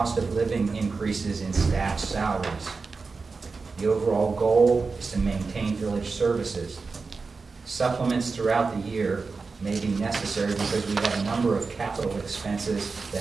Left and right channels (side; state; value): left; quieter; 4.4 dB